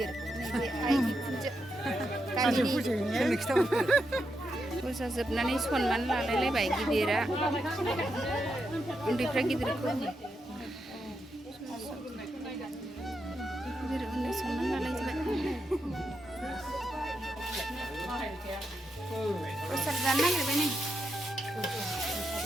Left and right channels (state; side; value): normal; both; correlation 0.84